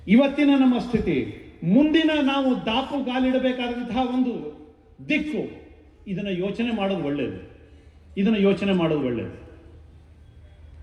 ಇವತ್ತಿನ ನಮ್ಮ ಸ್ಥಿತಿ, ಮುಂದಿನ ನಾವು ದಾಪುಗಾಲಿಡಬೇಕಾದಂತಹ ಒಂದು ದಿಕ್ಕು, ಇದನ್ನ ಯೋಚನೆ ಮಾಡೋದು ಒಳ್ಳೆಯದು.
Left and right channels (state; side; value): identical; both; correlation 1.00